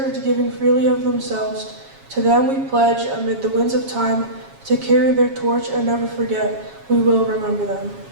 giving freely of themselves. To them we pledge, amid the winds of time, to carry their torch and never forget. We will remember them.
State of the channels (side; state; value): left; late; 7.3 ms